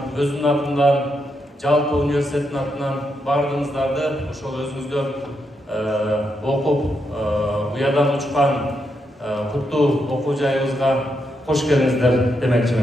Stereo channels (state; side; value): normal; both; correlation 0.81